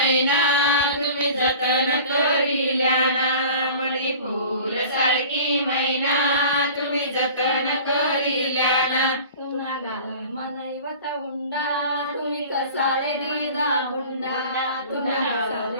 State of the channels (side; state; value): both; inverted; correlation -0.42